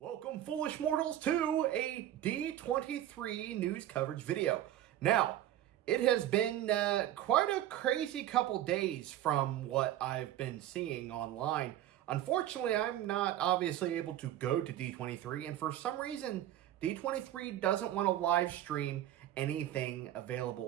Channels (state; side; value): quieter; left; 12.7 dB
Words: Welcome, foolish mortals, to a D23 news coverage video. Now, it has been quite a crazy couple days from what I've been seeing online. Unfortunately, I'm not obviously able to go to D23, and for some reason, D23 doesn't want to live stream anything